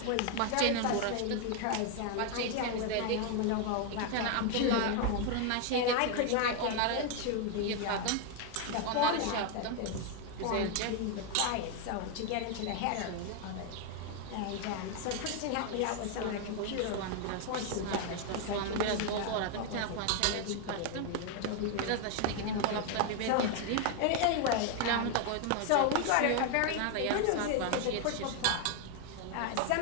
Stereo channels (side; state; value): both; different; correlation 0.01